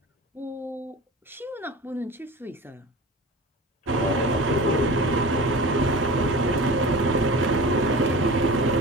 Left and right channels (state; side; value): normal; both; correlation 0.35